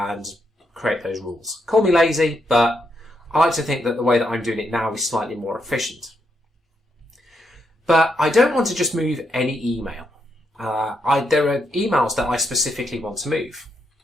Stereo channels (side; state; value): both; normal; correlation 0.79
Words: create those rules. Call me lazy, but I like to think that the way that I'm doing it now is slightly more efficient. But I don't want to just move any email. There are emails that I specifically want to move.